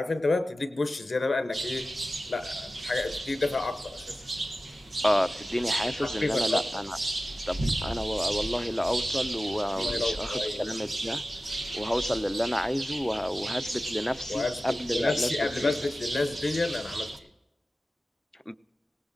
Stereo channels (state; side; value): normal; both; correlation 0.95